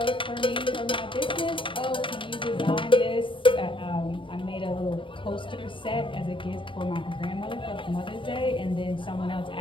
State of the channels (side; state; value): right; late; 0.25 ms